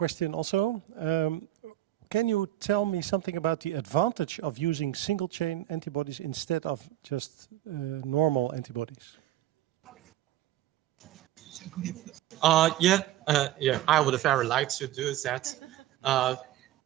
also. Can you tell me something about the advantage of using single-chain antibodies instead of just normal antibodies? Yeah, I would very like to do that.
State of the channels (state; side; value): quieter; left; 14.2 dB